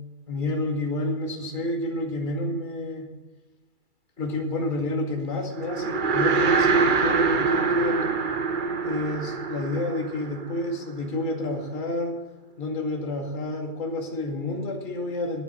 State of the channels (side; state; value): left; late; 2.3 ms